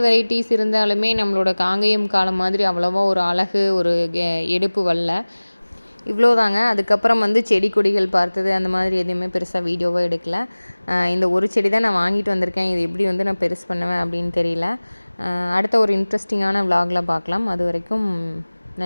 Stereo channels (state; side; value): inverted; both; correlation -1.00